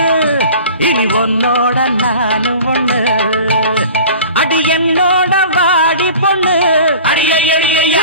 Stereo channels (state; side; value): inverted; both; correlation -0.41